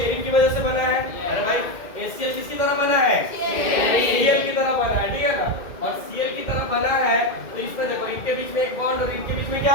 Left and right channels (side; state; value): right; late; 2.1 ms